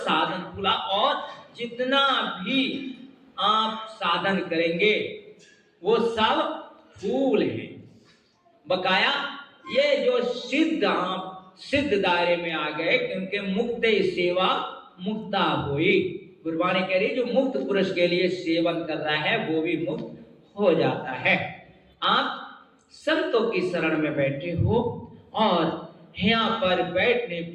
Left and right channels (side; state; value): both; identical; correlation 1.00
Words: फूला। और जितना भी आप साधन करेंगे वो सब फूल हैं। बकाया ये जो सिद्ध, आप सिद्ध दायरे में आ गए, क्योंकि मुक्त सेवा मुक्ता हुई। गुरबाणी कह रही जो मुक्त पुरुष के लिए सेवन कर रहा है वो भी मुक्त हो जाता है। आप संतों की शरण में बैठे हो और यहाँ पर बैठने